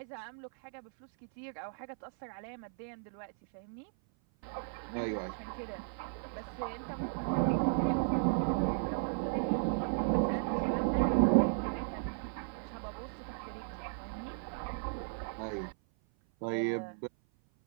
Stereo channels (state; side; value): silent; left; 54 dB below the other